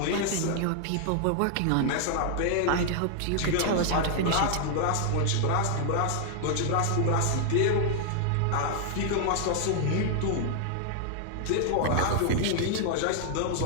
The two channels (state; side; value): different; both; correlation 0.00